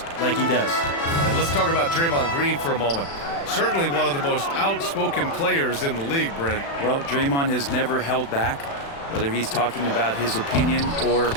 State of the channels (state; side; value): late; right; 36 ms